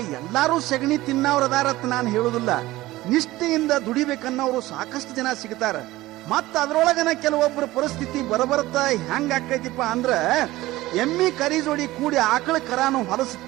ಎಲ್ಲಾರು ಸಗಣಿ ತಿನ್ನವ್ರದಾರತ್ ನಾನು ಹೇಳುದಿಲ್ಲ. ನಿಷ್ಠೆಯಿಂದ ದುಡಿಬೇಕನ್ನೋರು ಸಾಕಷ್ಟು ಜನ ಸಿಗ್ತಾರ. ಮತ್ತ ಅದ್ರೊಳಗನ ಕೆಲವೊಬ್ಬರ ಪರಿಸ್ಥಿತಿ ಬರಬರ್ತಾ ಹೆಂಗ ಆಕೈತಿಪ್ಪ ಅಂದ್ರ ಎಮ್ಮಿ ಕರಿ ಜೋಡಿ ಕೂಡಿ ಆಕಳ ಕರಾನು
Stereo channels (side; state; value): left; quieter; 17.6 dB